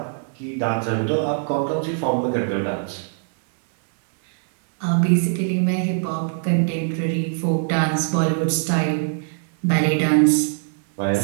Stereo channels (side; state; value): left; silent; 64 dB below the other